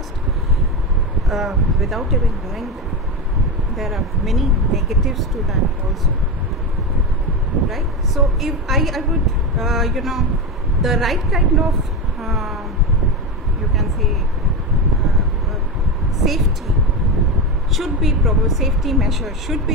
without even knowing them. There are many negatives to that also, right? So if I would the right kind of you can say safety measures should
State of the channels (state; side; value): normal; both; correlation 0.16